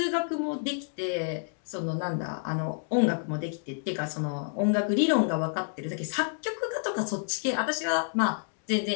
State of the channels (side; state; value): right; silent; digital silence